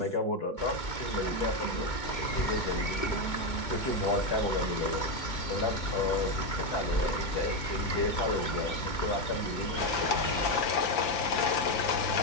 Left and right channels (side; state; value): right; late; 2.2 ms